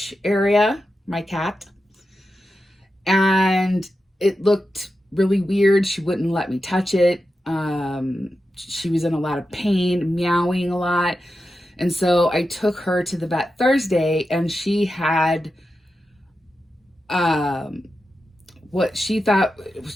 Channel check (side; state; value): both; normal; correlation 0.90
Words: area, my cat, and it looked really weird. She wouldn't let me touch it. She was in a lot of pain, meowing a lot. And so I took her to the vet Thursday, and she had what she thought,